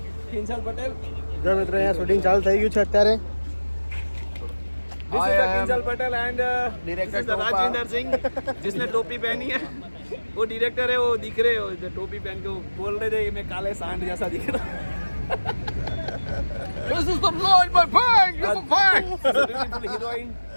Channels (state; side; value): inverted; both; correlation -1.00